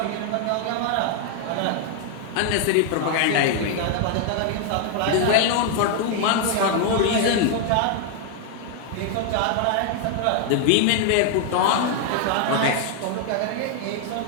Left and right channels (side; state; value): both; different; correlation 0.00